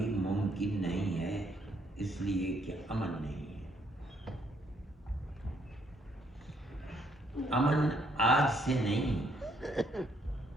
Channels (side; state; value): both; normal; correlation 0.70